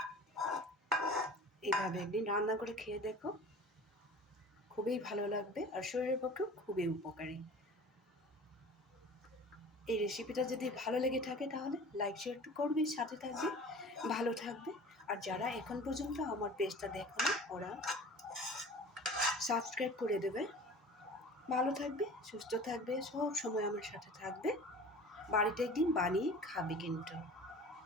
এইভাবে একদিন রান্না করে খেয়ে দেখো, খুবই ভালো লাগবে আর শরীরের পক্ষেও খুবই উপকারী। এই রেসিপিটা যদি ভালো লেগে থাকে তাহলে লাইক শেয়ার করবে, সাথে থাকবে, ভালো থাকবে। আর যারা এখন পর্যন্ত আমার পেজটা দেখোনি ওরা সাবস্ক্রাইব করে দেবে। ভালো থাকবে, সুস্থ থাকবে, সব সময় আমার সাথে থাকবে। বাড়িতে একদিন বানিয়ে খাবে কিন্তু।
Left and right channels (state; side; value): normal; both; correlation 0.41